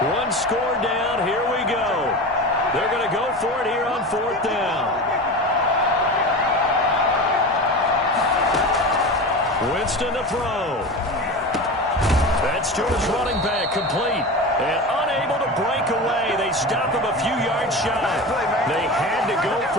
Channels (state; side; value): normal; both; correlation 0.28